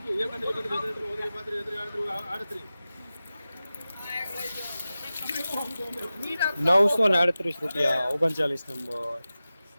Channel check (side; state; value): both; inverted; correlation -0.95